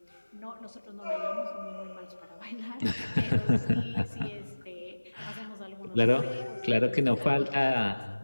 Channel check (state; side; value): inverted; both; correlation -1.00